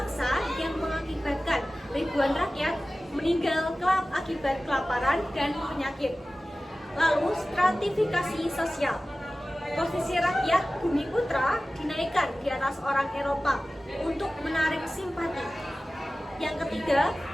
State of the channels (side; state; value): both; normal; correlation 0.96